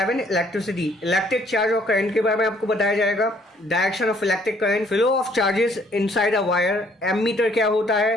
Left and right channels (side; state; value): both; normal; correlation 0.63